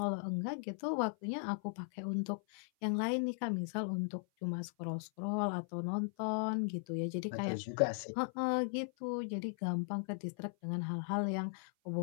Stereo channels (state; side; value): silent; right; 52 dB below the other